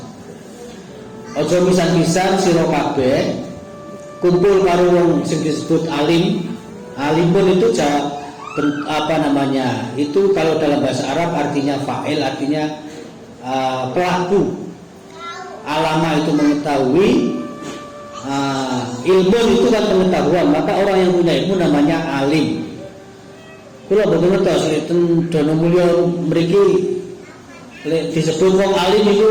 Aja pisan-pisan sira kabeh kumpul karo wong sing disebut alim. Alim pun itu itu kalau dalam bahasa Arab artinya fa'il, artinya pelaku. Alama itu mengetahui, ilmu itu kan pengetahuan, maka orang yang punya ilmu namanya alim. Kula boten ngertos lek Dono Mulyo mriki lek disebut wong alim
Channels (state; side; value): identical; both; correlation 1.00